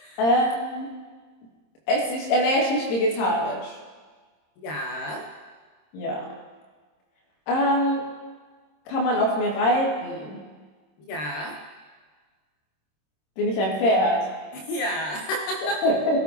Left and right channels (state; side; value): late; right; 26 ms